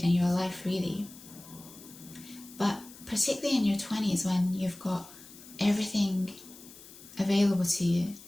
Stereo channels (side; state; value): left; noise; hiss, 19 dB below the sound